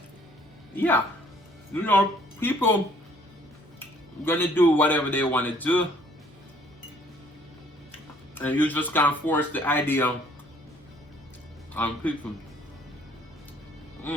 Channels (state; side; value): normal; both; correlation 0.61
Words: yeah, you know, people gonna do whatever they want to do, and you just can't force the idea on people.